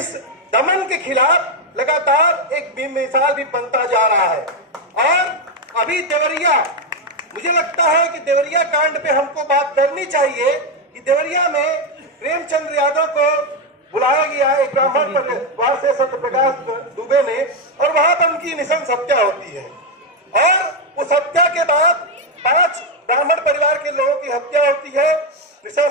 दमन के खिलाफ लगातार एक बेमिसाल भी बनता जा रहा है। और अभी देवरिया, मुझे लगता है कि देवरिया कांड पे हमको बात करनी चाहिए कि देवरिया में प्रेमचंद्र यादव को बुलाया गया एक ब्राह्मण परिवार से, सत्यप्रकाश दुबे ने, और वहां पर उनकी निशंस हत्या होती है। और उस हत्या के बाद 5 ब्राह्मण परिवार के लोगों की हत्या होती है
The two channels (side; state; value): both; normal; correlation 0.06